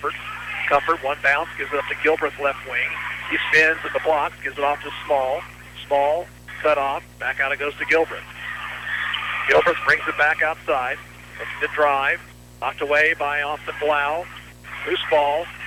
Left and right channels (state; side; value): identical; both; correlation 1.00